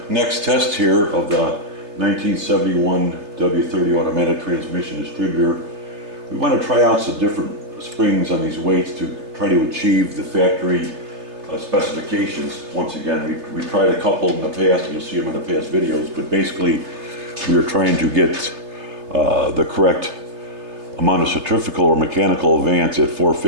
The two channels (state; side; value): late; left; 3.3 ms